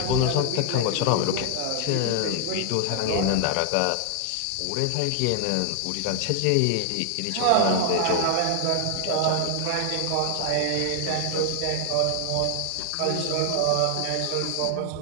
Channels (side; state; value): both; different; correlation 0.00